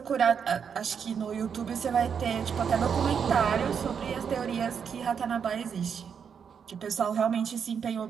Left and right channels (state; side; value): quieter; left; 7.1 dB